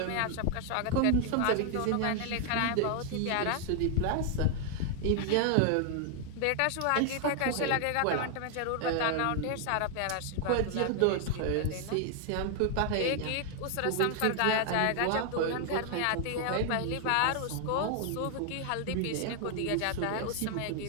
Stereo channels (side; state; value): both; different; correlation 0.00